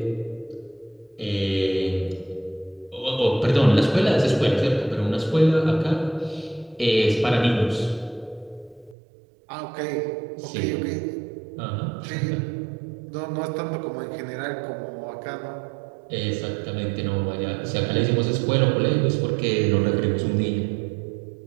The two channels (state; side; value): drops out; left; at 9.0 s